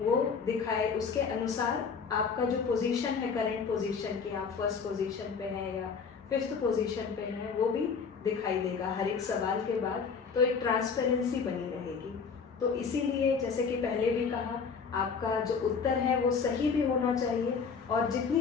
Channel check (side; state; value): right; quieter; 5.6 dB